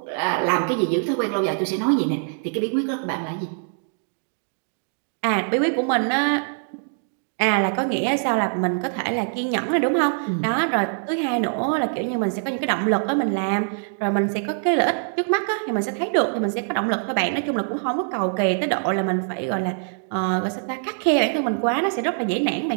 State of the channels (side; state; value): left; silent; digital silence